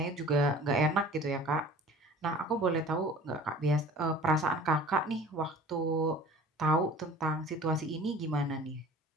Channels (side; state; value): both; normal; correlation 0.45